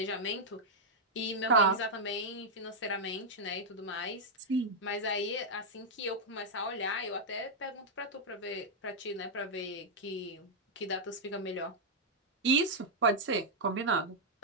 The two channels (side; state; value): both; normal; correlation -0.04